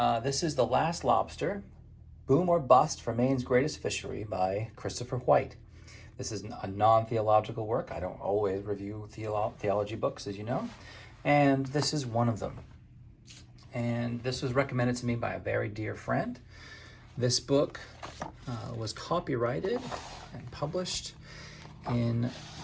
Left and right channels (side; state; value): both; identical; correlation 1.00